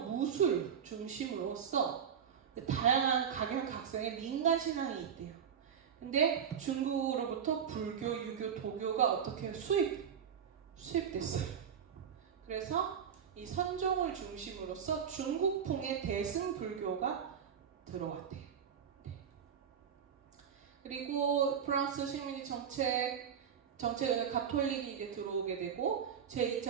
무술 중심으로서 다양한 각양각색의 민간 신앙이 있대요. 근데 중국으로부터 불교, 유교, 도교가 어떻게 수입됐어요. 그래서 이 선종을 중심으로서 중국풍의 대승불교가 들어왔대요. 그리고 프랑스 식민지 정책을 가톨릭이 이제 들어오게 되고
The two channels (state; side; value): quieter; left; 7.8 dB